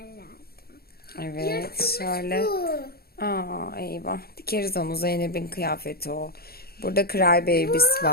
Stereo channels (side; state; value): right; late; 0.45 ms